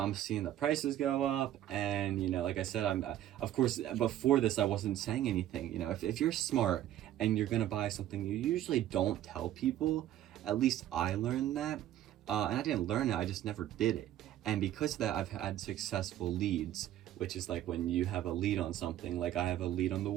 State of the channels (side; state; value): left; quieter; 12.4 dB